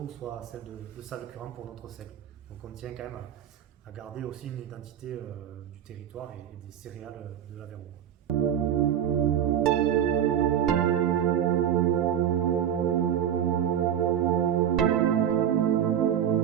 soit celle de Salles-Curran pour notre seigle. Donc on tient quand même à garder aussi une identité du territoire et des céréales de l'Aveyron.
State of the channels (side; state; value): left; quieter; 9.8 dB